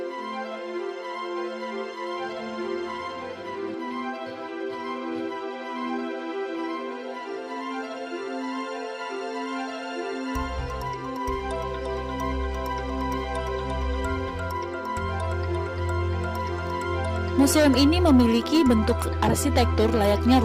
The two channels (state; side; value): identical; both; correlation 1.00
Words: Museum ini memiliki bentuk arsitektur layaknya